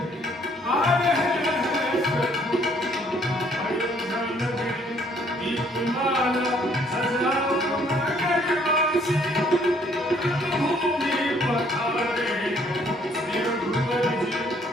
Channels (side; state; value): both; normal; correlation 0.63